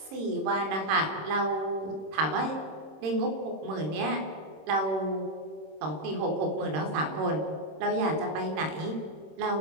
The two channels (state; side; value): late; left; 26 ms